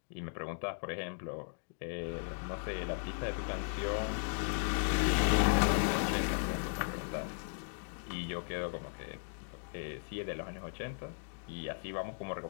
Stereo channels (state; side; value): silent; right; digital silence